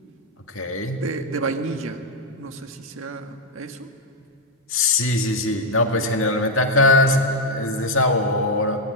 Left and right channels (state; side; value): normal; both; correlation 0.01